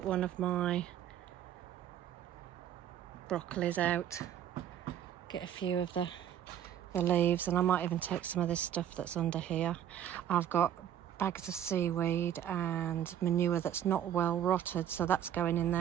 one of my broccolis out. Get a few of the leaves, and I might even take some of this stuff that's under here. I've got bags of seaweed and manure that's not well rotted, so that's going in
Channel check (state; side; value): quieter; left; 10.3 dB